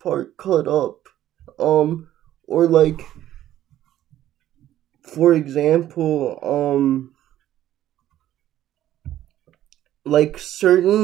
cut up. Um, or like, for example, like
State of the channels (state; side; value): quieter; left; 12.7 dB